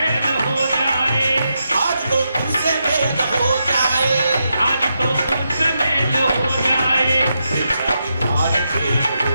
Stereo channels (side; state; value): both; inverted; correlation -0.84